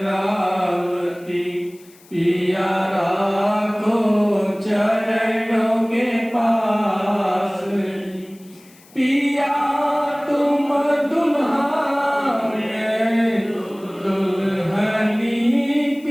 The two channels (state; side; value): noise; left; hiss, 27 dB below the sound